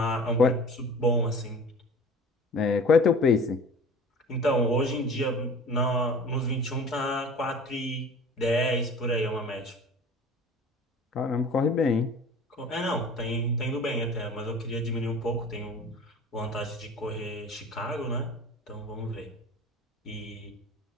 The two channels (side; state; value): both; normal; correlation 0.42